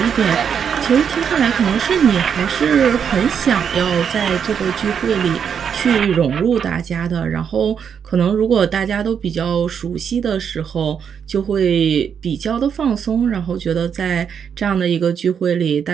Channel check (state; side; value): quieter; left; 7.5 dB